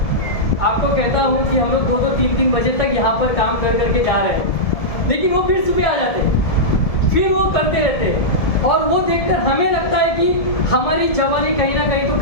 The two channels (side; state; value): right; late; 1.7 ms